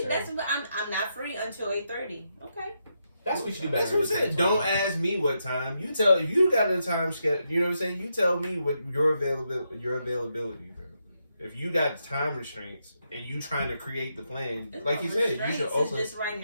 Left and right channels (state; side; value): inverted; both; correlation -0.82